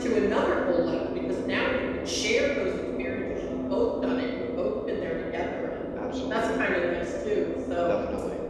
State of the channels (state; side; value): identical; both; correlation 1.00